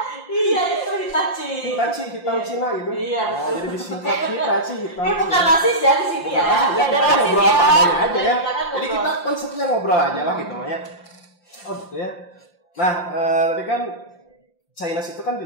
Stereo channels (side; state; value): right; late; 5.7 ms